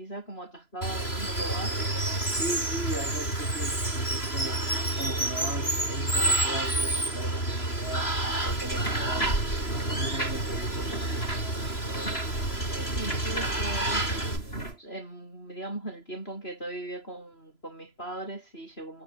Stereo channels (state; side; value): late; right; 3.0 ms